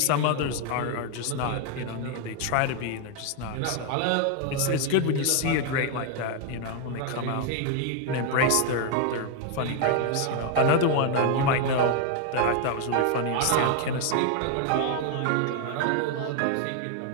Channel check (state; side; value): different; both; correlation 0.01